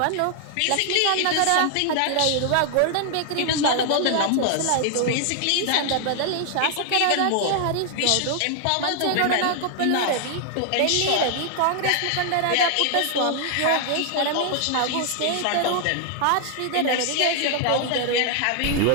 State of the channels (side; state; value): both; different; correlation 0.00